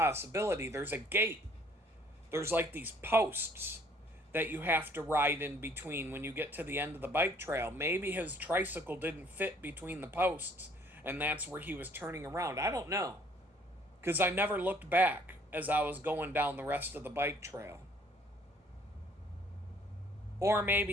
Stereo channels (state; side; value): normal; both; correlation 0.60